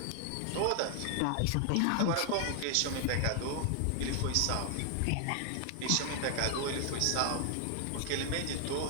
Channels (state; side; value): different; both; correlation 0.00